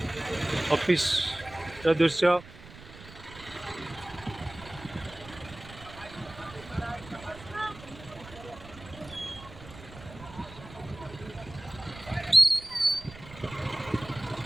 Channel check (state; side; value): noise; right; rumble, 17 dB below the sound